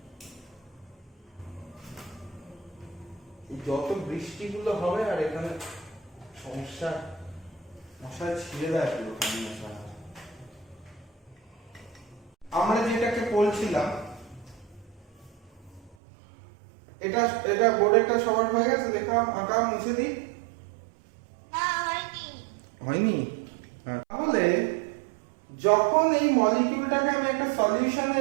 যত বৃষ্টিগুলো হবে আর এখানে সমস্যা, মশায় ছিঁড়ে দেয় পুরো মশা। আমরা যেটাকে বলছিলাম, এটা বোর্ডেরটা সবার হয়ে গেছে, লেখা আঁকা মুছে দিই। না, হয়নি? তাহলে যখন এই মলিকিউলটাকে আমি একটা সলিউশনে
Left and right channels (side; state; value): left; drops out; at 16.0 s